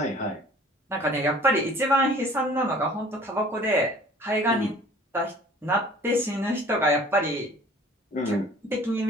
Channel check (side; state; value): both; normal; correlation 0.50